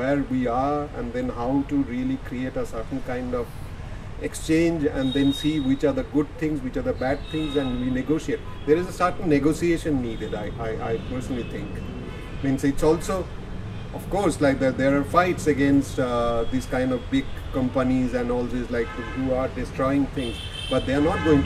we are, and then how to really create a certain kind of exchange, and then see which are the good things, which are the bad things, and we negotiate. There is a certain negotiation needed, I personally think. Means it's also, of course, like there are fights against these kind of big companies and all this, like who are destroying things, but they are not going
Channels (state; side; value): identical; both; correlation 1.00